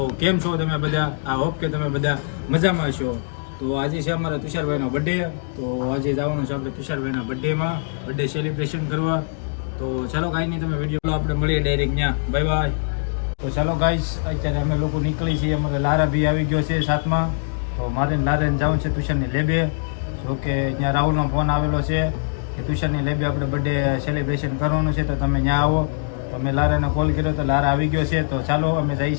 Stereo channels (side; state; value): right; silent; digital silence